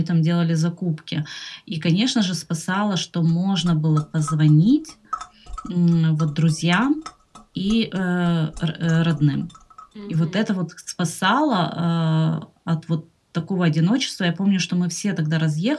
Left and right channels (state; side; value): identical; both; correlation 1.00